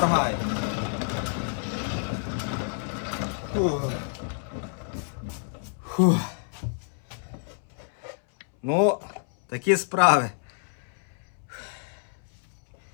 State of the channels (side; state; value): right; silent; 59 dB below the other